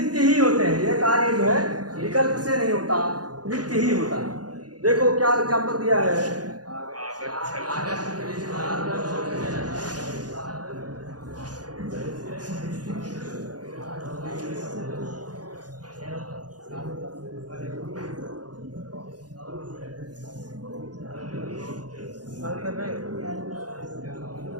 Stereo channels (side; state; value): left; late; 0.69 ms